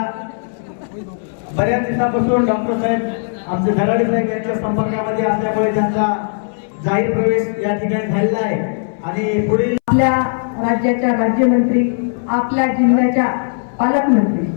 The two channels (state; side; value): silent; right; 66 dB below the other